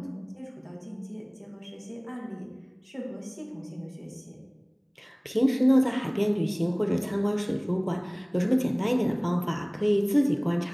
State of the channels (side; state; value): both; identical; correlation 1.00